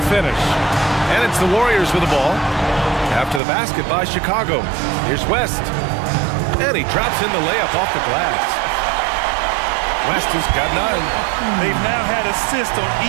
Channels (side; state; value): left; drops out; at 3.4 s